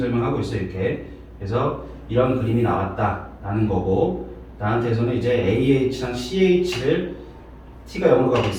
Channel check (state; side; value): identical; both; correlation 1.00